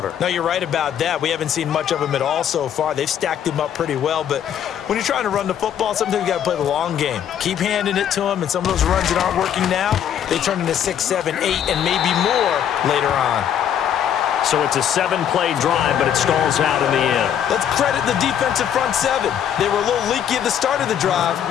No, you're right about that. We haven't seen much of him at all so far. They've stacked him up pretty well, but when you're trying to run the football, sometimes you got to play the long game. Keep handing it to him, and some of those runs that aren't working now, they turn into 6, 7, 8, and maybe more later on. So it's a 7-play drive, but it stalls out in the end. Let's credit the defensive front 7. They were a little leaky at the start of the drive,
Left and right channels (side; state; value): right; quieter; 9.4 dB